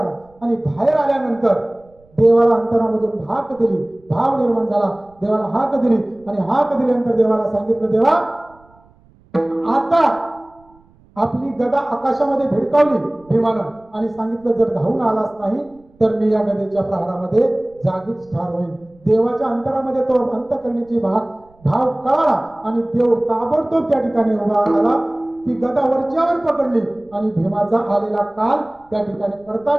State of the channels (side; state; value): right; noise; rumble, 30 dB below the sound